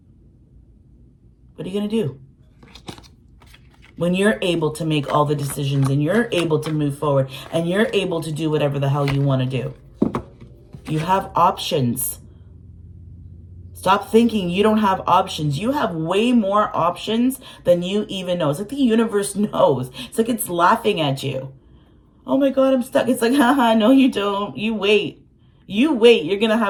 are you going to do? When you're able to make all the decisions and you're able to move forward and you're able to do whatever the hell you want to do. You have options. Stop thinking you don't have options. You have way more options than you even know. It's like the universe knows. It's like it's laughing at you. Oh my God, I'm stuck. It's like, haha, no you don't. You wait. You wait. You're going to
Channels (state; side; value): identical; both; correlation 1.00